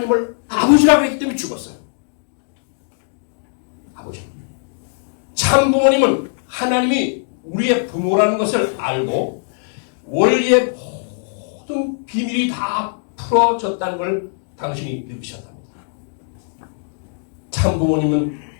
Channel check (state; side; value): silent; right; digital silence